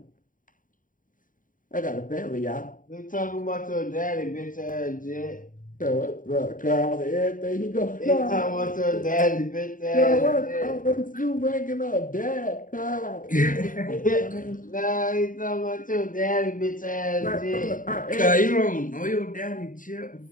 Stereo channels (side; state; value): right; late; 0.39 ms